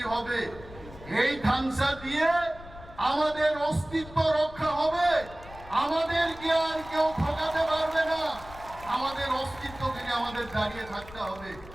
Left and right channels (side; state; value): left; noise; rumble, 17 dB below the sound